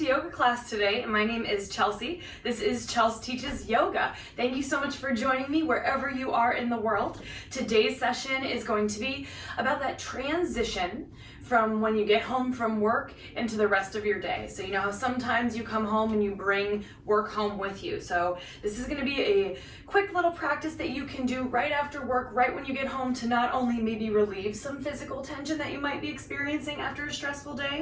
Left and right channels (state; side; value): identical; both; correlation 1.00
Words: yoga class today. My name is Chelsea. This is Chelsea Teaches Yoga. Thank you so much for joining me wherever you are in the world. Today's session is going to be about that transition from when you get home from work into the rest of your day. So you know how sometimes you come home and you bring work home with you. So this is going to be a quick little practice that you can do right after work, right when you get home, to not only maybe relieve some physical tension that you might be experiencing after a stressful